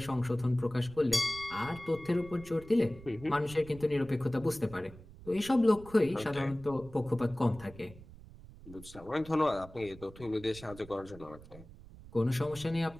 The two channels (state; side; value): noise; right; rumble, 18 dB below the sound